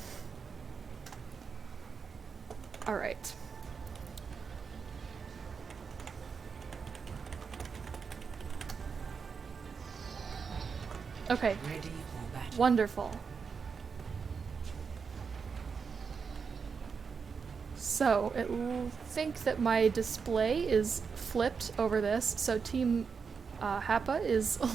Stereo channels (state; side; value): quieter; left; 5.7 dB